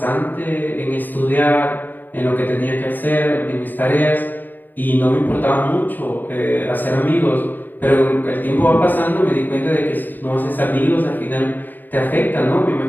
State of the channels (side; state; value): right; late; 0.090 ms